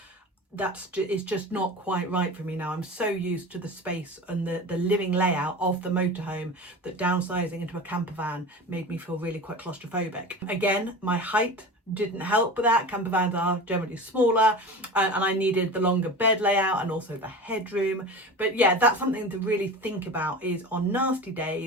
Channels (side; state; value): both; normal; correlation 0.32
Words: it's just not quite right for me now. I'm so used to the space and the living layout of the motorhome that downsizing into a camper van made me feel really quite claustrophobic. Again, my height didn't help with that. Camper vans are generally smaller, and I needed the longer bed layout and also the headroom. But yeah, that's something to really think about, is on nasty